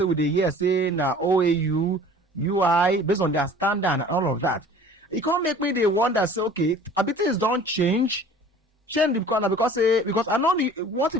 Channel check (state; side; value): normal; both; correlation 0.47